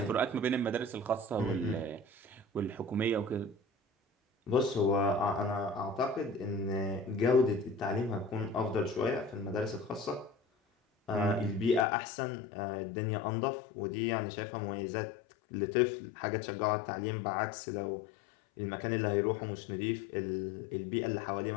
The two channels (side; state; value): right; drops out; at 11.9 s